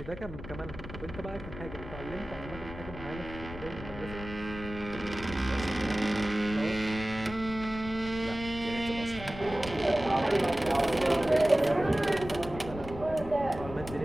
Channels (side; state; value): left; noise; rumble, 12 dB below the sound